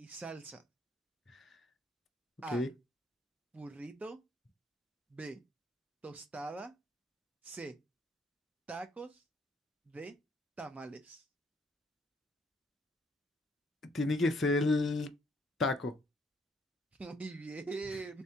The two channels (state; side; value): normal; both; correlation 0.67